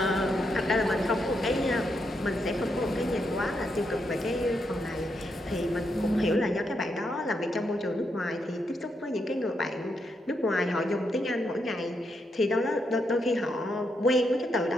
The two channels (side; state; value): both; normal; correlation 0.81